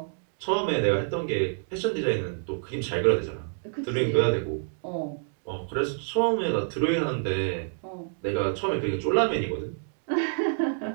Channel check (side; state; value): left; silent; digital silence